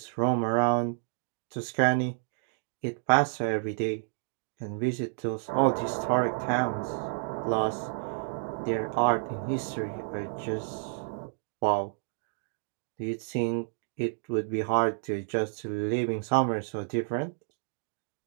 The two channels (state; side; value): silent; left; digital silence